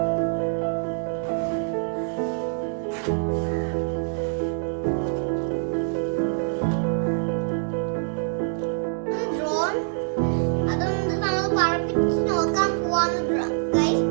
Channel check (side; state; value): left; silent; 62 dB below the other